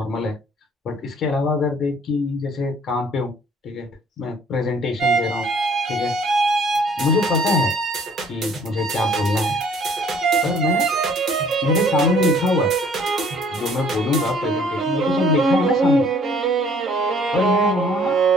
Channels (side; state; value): both; normal; correlation 0.57